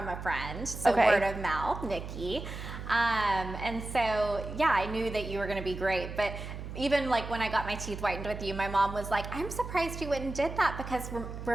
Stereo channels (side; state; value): right; noise; hum, 9 dB below the sound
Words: a friend, so word of mouth, Nikki. And so, yeah, I knew that you were going to be great. But even like when I got my teeth whitened with you, my mom was like, I'm surprised you went and did that because